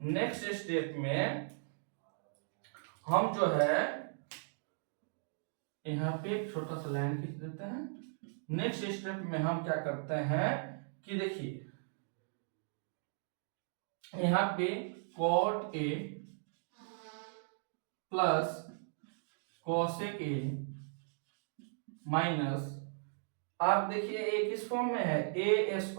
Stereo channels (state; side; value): silent; left; digital silence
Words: नेक्स्ट स्टेप में हम जो है यहाँ पे एक छोटा सा लाइन खींच देते हैं। नेक्स्ट स्टेप में हम क्या करते हैं कि देखिए यहाँ पे cot a plus cosec a minus, आप देखिए a किस फॉर्म में है, a